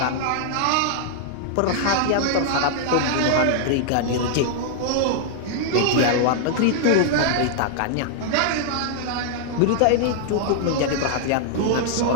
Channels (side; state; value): both; different; correlation -0.01